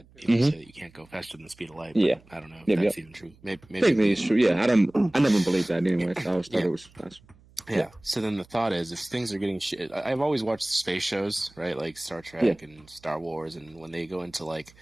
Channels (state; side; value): noise; right; hum, 27 dB below the sound